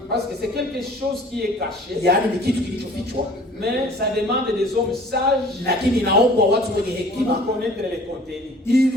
Parce que c'est quelque chose qui est caché, yaani ni kitu kilichofichwa, mais ça demande des hommes sages lakini inaombwa watu wenye pour hekima connaître les contenus.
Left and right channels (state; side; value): normal; both; correlation 0.50